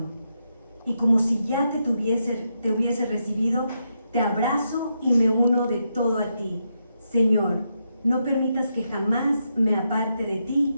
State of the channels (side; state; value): both; inverted; correlation -0.83